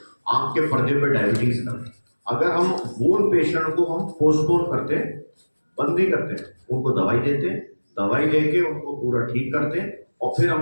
आंख के पर्दे पे डायबिटीज का, अगर हम वो पेशेंट को हम पोस्टपोन करते हैं, बंद नहीं करते, उनको दवाई देते हैं, दवाई देके उनको पूरा ठीक करते हैं और फिर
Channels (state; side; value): inverted; both; correlation -1.00